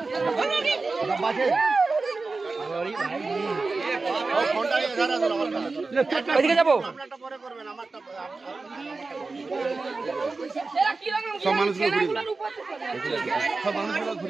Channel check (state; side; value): quieter; left; 3.8 dB